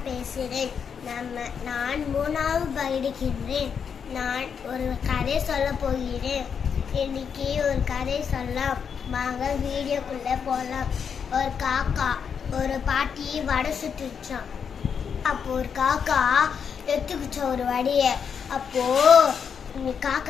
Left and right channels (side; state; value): right; quieter; 6.9 dB